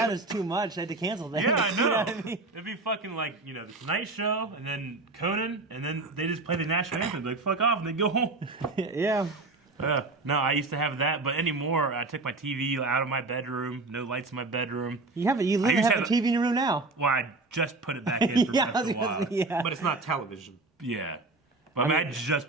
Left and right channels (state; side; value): quieter; left; 3.3 dB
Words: was too much. I had to cancel that. Yeah, I know. You know what I mean? It'd be fucking like, the Tonight Show, and then Conan, and then they just play the national anthem. They'd be like, fuck off, and they'd go home. Yeah. No, I used to have that, but anymore, I took my TV out of my bedroom, no lights in my bedroom. You literally have a TV in your room now. Well, I just put it back in for Breath of the Wild. Yeah. But it's not television. Yeah. But I